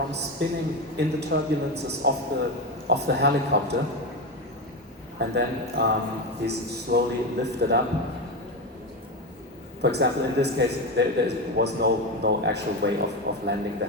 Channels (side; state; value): both; normal; correlation 0.16